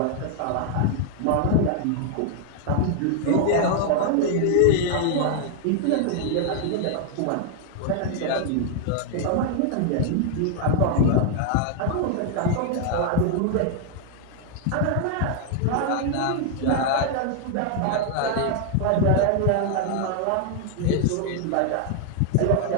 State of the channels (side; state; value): both; different; correlation 0.00